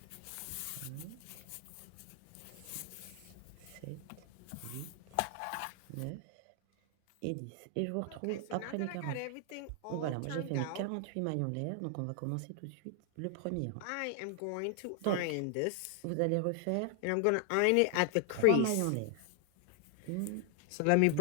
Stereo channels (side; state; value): both; different; correlation 0.00